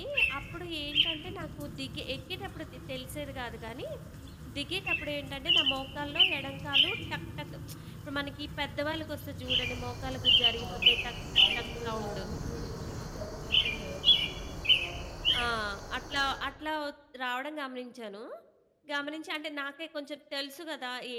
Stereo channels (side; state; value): both; identical; correlation 1.00